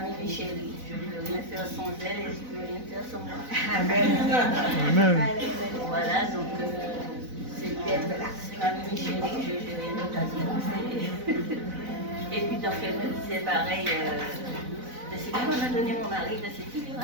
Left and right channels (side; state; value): left; late; 4.0 ms